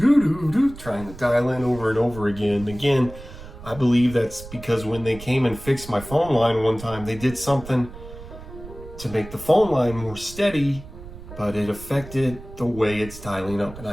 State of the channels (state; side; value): noise; right; rumble, 15 dB below the sound